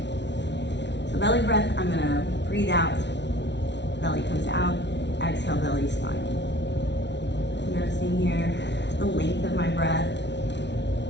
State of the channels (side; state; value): right; late; 0.51 ms